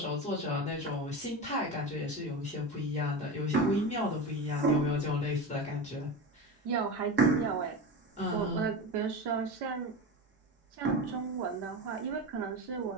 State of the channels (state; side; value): normal; both; correlation 0.24